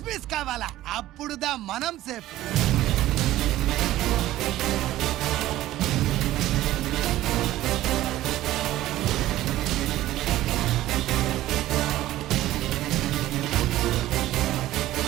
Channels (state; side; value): quieter; left; 14.9 dB